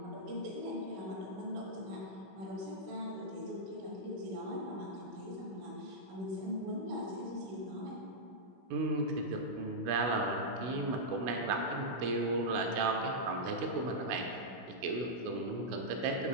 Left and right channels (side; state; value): left; late; 16 ms